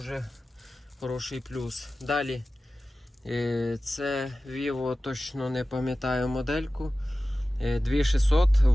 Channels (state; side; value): normal; both; correlation 0.95